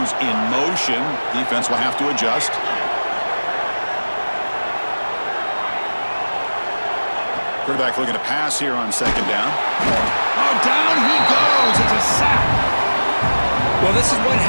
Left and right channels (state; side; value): inverted; both; correlation -1.00